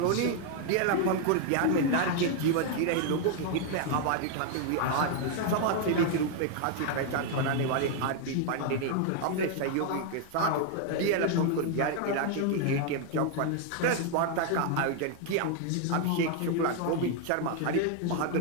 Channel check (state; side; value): different; both; correlation 0.00